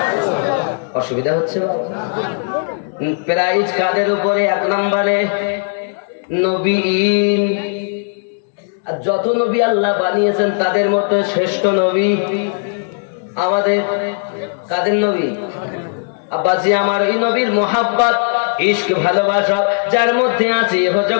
অসুবিধা হচ্ছে? প্রাইজ কাদের উপরে? 1 নম্বরে নবীন। আর যত নবী আল্লাহ বানিয়েছেন তাদের মধ্যে শ্রেষ্ঠ নবী আমাদের কাদের নবী? আব্বাজি আমার, এই নবীর মোহাব্বত, ইশক, ভালোবাসা যার মধ্যে আছে ইহ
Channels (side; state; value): right; silent; digital silence